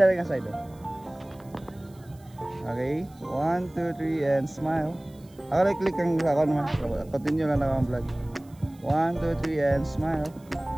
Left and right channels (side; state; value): right; noise; hiss, 29 dB below the sound